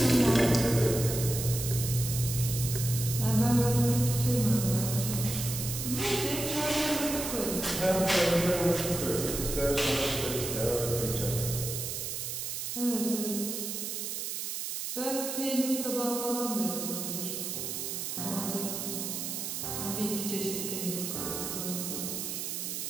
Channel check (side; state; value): right; noise; hiss, 4 dB below the sound